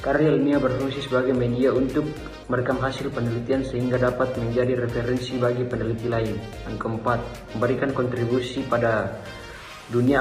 Karya ilmiah berfungsi sebagai media untuk merekam hasil penelitian sehingga dapat menjadi referensi bagi peneliti lain. Yang keempat, memberikan kontribusi pada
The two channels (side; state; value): both; identical; correlation 1.00